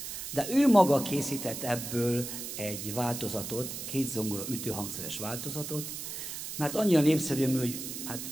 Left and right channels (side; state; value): right; noise; hiss, 7 dB below the sound